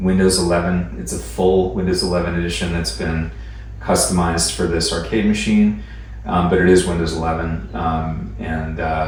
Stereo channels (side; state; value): both; identical; correlation 1.00